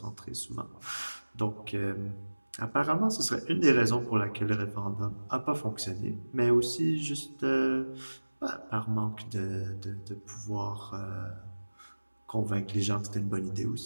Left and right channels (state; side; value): inverted; both; correlation -1.00